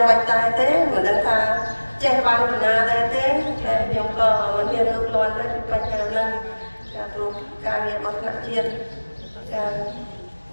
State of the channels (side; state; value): both; inverted; correlation -1.00